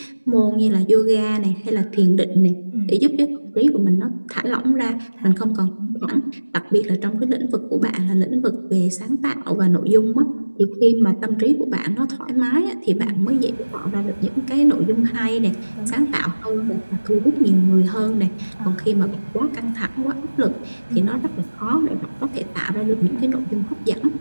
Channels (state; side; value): inverted; both; correlation -1.00